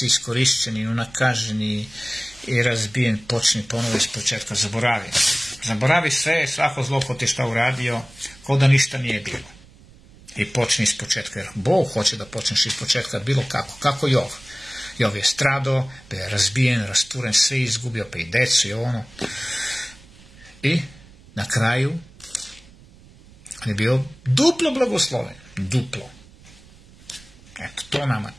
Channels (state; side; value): noise; right; rumble, 24 dB below the sound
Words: iskorišćeni, unakaženi i razbijen, počni ponovo iz početka, zaboravi sve, svako zlo ko ti šta uradio, ko da ništa nije bilo. I počni iz početka, jer Bog hoće da počneš iz početka bilo kako Jov. Jov je stradao, bio je razbijen, rasturen, sve izgubio, pa i decu i I na kraju on je bio duplo blagosloven. Duplo. Eto, to nama